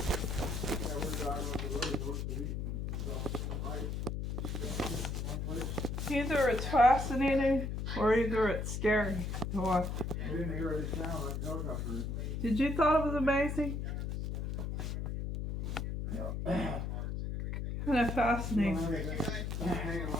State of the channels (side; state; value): left; noise; hum, 3 dB below the sound